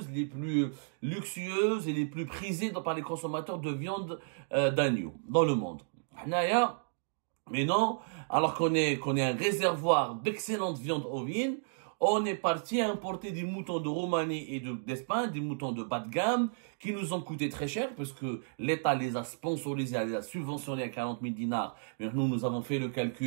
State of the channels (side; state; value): left; silent; digital silence